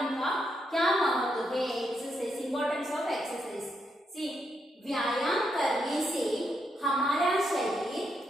का क्या महत्व है? Exercise, importance of exercise. See, व्यायाम करने से हमारा शरीर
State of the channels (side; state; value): both; normal; correlation 0.80